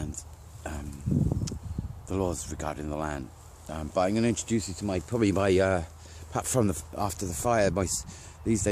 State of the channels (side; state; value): both; identical; correlation 1.00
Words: the laws regarding the land. But I'm going to introduce you to perhaps from after the fire, these